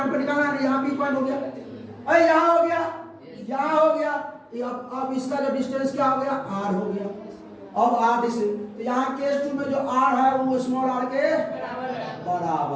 पर निकालना है, यहाँ पी पॉइंट हो गया, अरे यहाँ हो गया, यहाँ हो गया। अब इसका जो डिस्टेंस क्या हो गया? आर हो गया। अब आर डिस्टेंस, तो यहाँ केस 2 में जो आर है वो स्मॉल आर के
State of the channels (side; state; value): both; identical; correlation 1.00